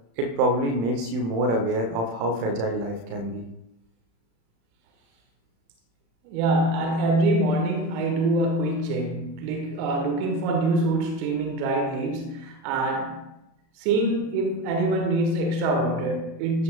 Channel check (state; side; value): late; left; 35 ms